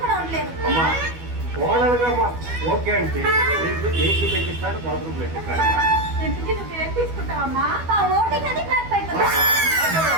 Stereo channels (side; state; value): left; late; 12 ms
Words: కూడా ఉండలేను. అమ్మా కోడలుగా ఓకే అంటే ఏసీ పెట్టిస్తాను, బాత్రూమ్ పెట్టిస్తాను. ఇంటికి నువ్వేం తీసుకుంటావమ్మా? ఆ ఓటింగ్ అది బ్యాక్ అయిపోతుంది.